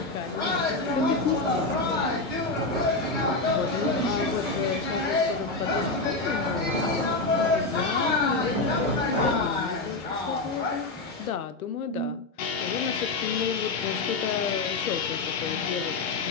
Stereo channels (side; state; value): right; quieter; 3.4 dB